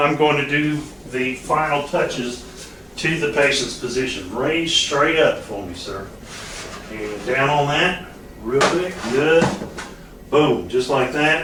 going to do the final touches to the patient's position. Raise straight up for me, sir. And down on that, real quick, good. Boom, just like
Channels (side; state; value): both; identical; correlation 1.00